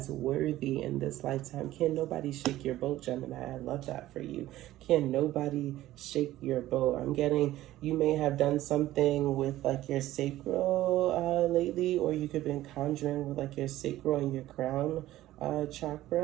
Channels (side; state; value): left; quieter; 15.1 dB